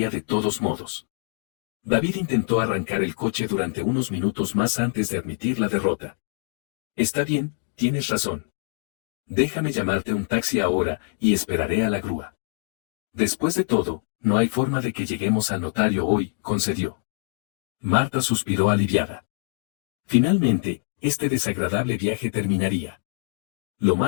de todos modos. David intentó arrancar el coche durante unos minutos más antes de admitir la derrota. «Está bien, tienes razón. Déjame llamarte un taxi ahora y esperaré a la grúa. Después de todo, no hay forma de que lleguemos al notario hoy», concedió. Marta suspiró aliviada. Finalmente, este desagradable viaje terminaría. Lo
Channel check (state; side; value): silent; right; digital silence